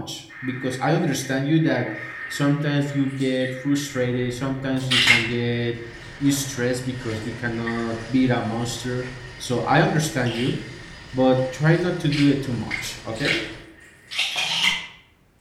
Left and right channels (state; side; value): identical; both; correlation 1.00